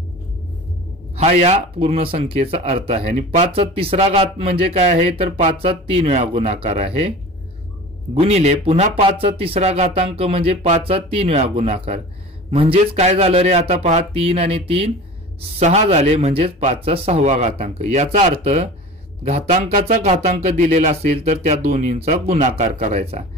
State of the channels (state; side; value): normal; both; correlation 0.37